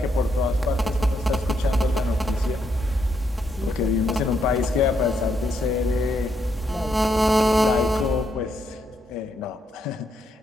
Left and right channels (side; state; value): both; normal; correlation 0.77